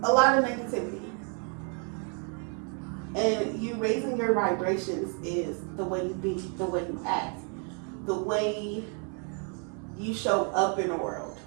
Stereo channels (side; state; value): left; quieter; 39.6 dB